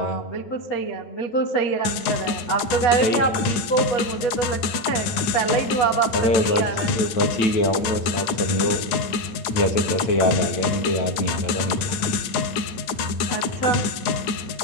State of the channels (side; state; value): right; late; 8.9 ms